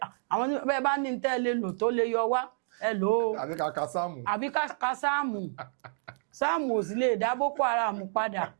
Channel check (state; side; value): silent; left; digital silence